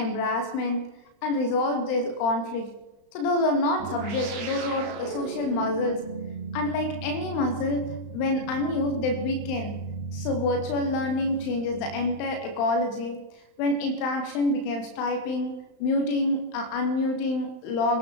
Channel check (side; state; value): right; late; 35 ms